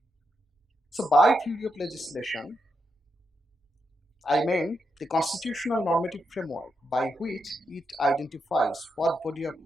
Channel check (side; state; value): both; normal; correlation 0.83